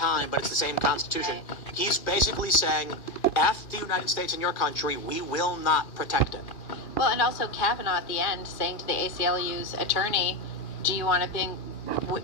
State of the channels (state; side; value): late; right; 2.4 ms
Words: but it's the same Constitution, he's basically saying, F the United States and your country, we will not protect it. Well, and also Kavanaugh at the end saying to the ACLU's attorney, do you want a